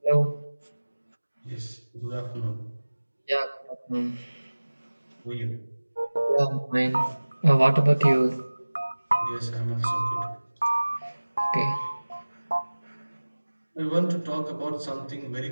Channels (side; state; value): both; inverted; correlation -1.00